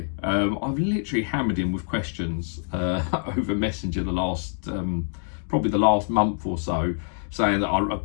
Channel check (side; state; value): right; silent; digital silence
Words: I've literally hammered him with questions over Messenger probably the last month or so, saying that